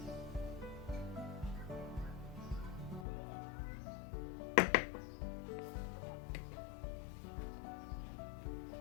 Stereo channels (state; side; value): drops out; right; at 3.1 s